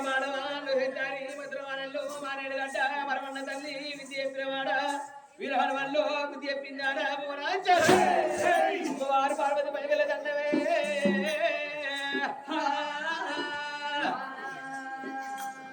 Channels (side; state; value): both; identical; correlation 1.00